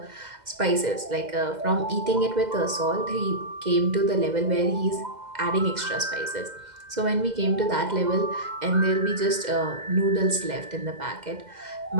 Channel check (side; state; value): left; late; 2.0 ms